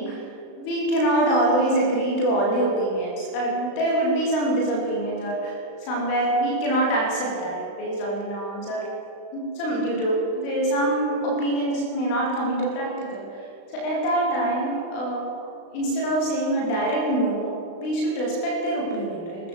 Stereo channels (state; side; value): late; right; 36 ms